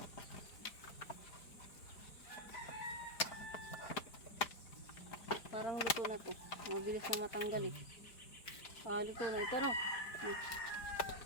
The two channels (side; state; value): right; late; 5.0 ms